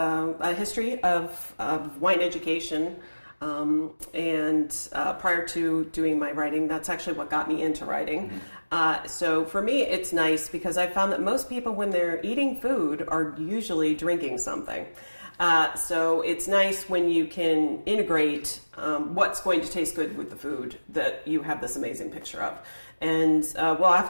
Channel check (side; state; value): both; inverted; correlation -1.00